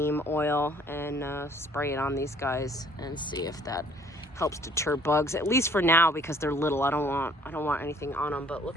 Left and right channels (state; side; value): normal; both; correlation 0.58